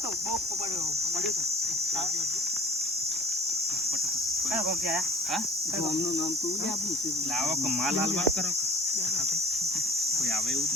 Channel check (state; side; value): normal; both; correlation 0.48